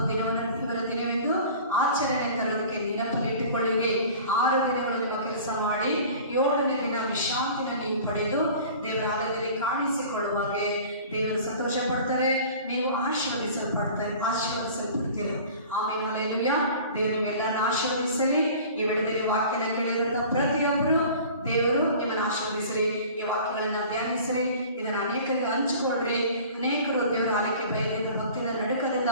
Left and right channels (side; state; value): both; inverted; correlation -0.43